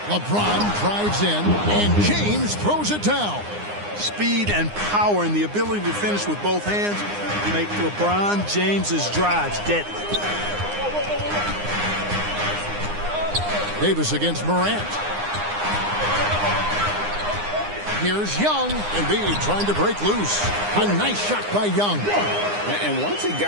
LeBron drives in, and James throws it down. Speed and power and the ability to finish with both hands make LeBron James's drives deadly. Davis against Morant. Here's Young. Embiid trying to break loose. A nice shot by Young. And once he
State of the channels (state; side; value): late; left; 9.8 ms